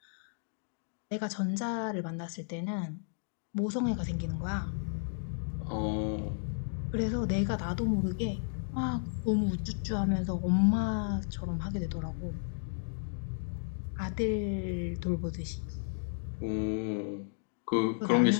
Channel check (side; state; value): right; silent; digital silence